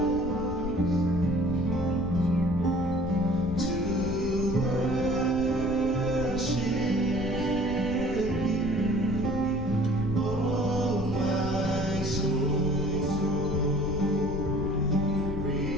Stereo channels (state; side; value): noise; left; rumble, 8 dB below the sound